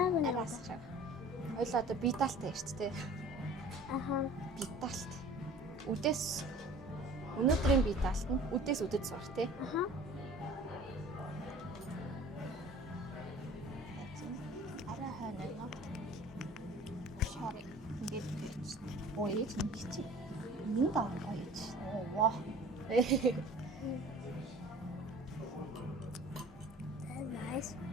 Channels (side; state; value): both; normal; correlation 0.46